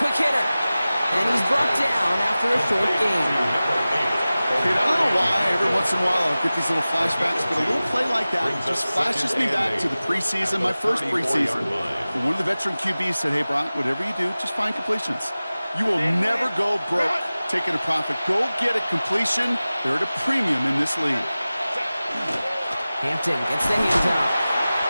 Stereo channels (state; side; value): inverted; both; correlation -0.97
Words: hitter. And he's brought down after a short gain. Kate, I don't know why every once in a while I'll get these little flashbacks, but a little play like that just flashes me back to the preseason, my first preseason. And one of the veteran QBs said, hey, Brock, whatever you do, just find completions. You will never go broke taking a profit. Go get a completion. They're at a premium in this league. Hampton gets the hands out.